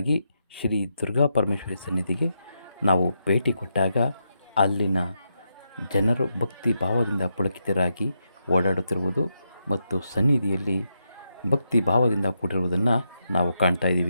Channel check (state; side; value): inverted; both; correlation -0.84